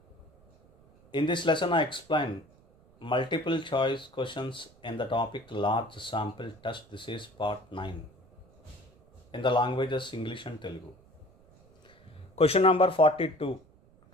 In this lesson I explain multiple choice questions in the topic large sample test. This is part 9 in the languages English and Telugu. Question number 42.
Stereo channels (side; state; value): right; noise; rumble, 28 dB below the sound